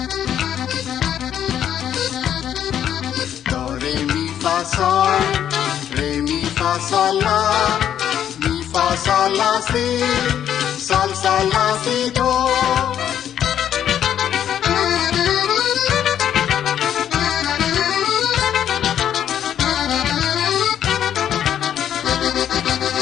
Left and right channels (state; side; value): quieter; right; 9.9 dB